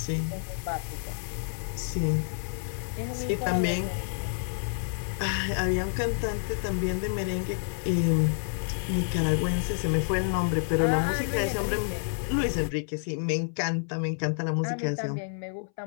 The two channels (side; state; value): right; silent; 59 dB below the other